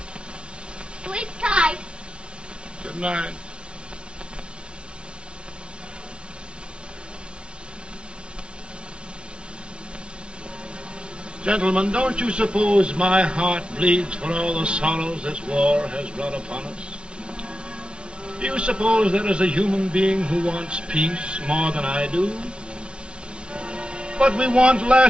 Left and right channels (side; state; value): left; late; 0.057 ms